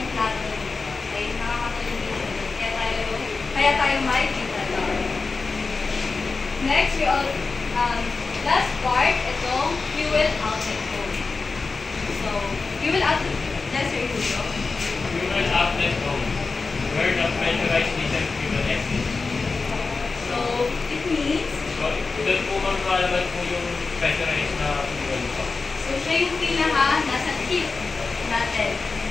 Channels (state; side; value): quieter; right; 4.2 dB